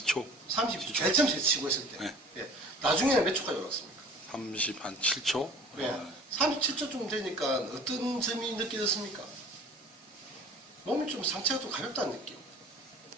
32초. 제일 처음 치고 했을 때. 네. 예. 나중에는 몇 초까지 올랐습니까? 37초. 네. 37초쯤 되니까 어떤 점이 느껴졌습니까? 몸이 좀 상체가 좀 가볍다는 느낌.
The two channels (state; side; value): normal; both; correlation 0.46